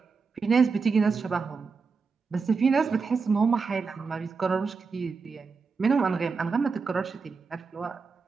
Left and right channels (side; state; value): left; quieter; 4.9 dB